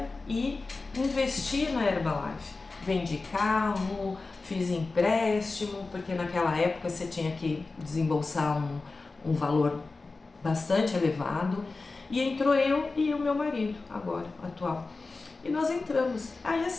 e investir na Herbalife. Vendi carro, fiz empréstimo, porque naquela época você tinha que desembolsar um valor bastante elevado. E entrou eu e o meu marido, agora, atual. E nós entramos. Aí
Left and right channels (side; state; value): right; quieter; 3.7 dB